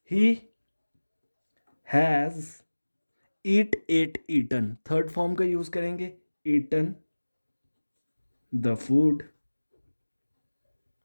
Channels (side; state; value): both; inverted; correlation -1.00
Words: He has eat, ate, eaten. Third form का यूज करेंगे, ईटन द फूड।